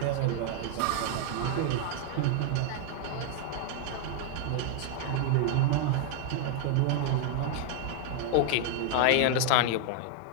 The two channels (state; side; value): different; both; correlation 0.00